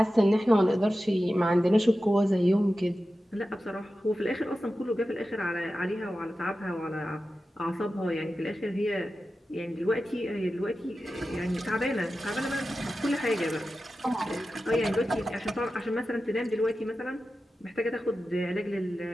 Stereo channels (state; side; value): normal; both; correlation 0.93